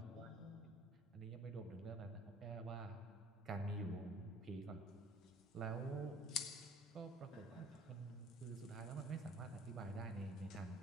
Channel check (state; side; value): normal; both; correlation 0.51